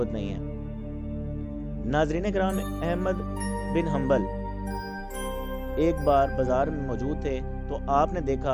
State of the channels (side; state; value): both; identical; correlation 1.00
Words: نہیں ہے۔ ناظرین کرام، احمد بن حنبل ایک بار بازار میں موجود تھے تو آپ نے